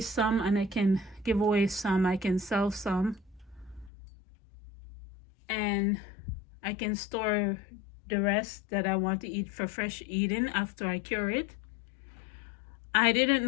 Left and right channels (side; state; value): right; drops out; at 3.9 s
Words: some, and I can give away some. I can sell some, and I can store the rest that I want to eat for fresh eating after I cure it. I didn't